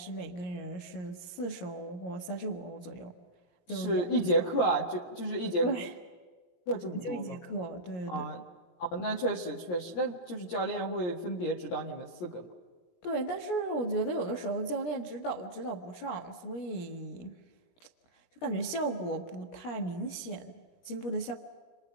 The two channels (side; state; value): right; late; 17 ms